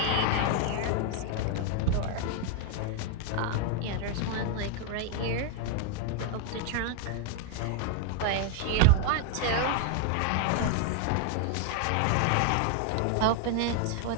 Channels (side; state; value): both; different; correlation 0.00